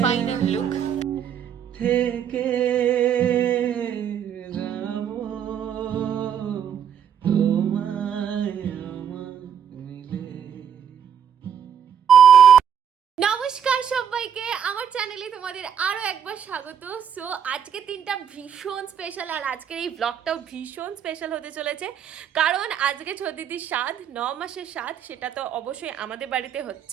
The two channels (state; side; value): quieter; left; 8.4 dB